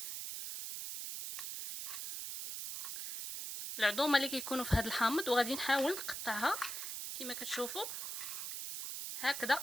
في هاد الحامض، وغادي نحاول نقطعها كما كتشوفوا هكذا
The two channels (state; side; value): noise; right; hiss, 5 dB below the sound